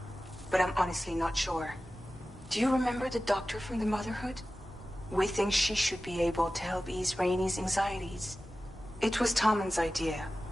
but I'm honestly not sure. Do you remember the doctor from the Motherhood? We think she should be able to help ease Rainy's anxieties. It was Tommen's idea.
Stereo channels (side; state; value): both; normal; correlation 0.95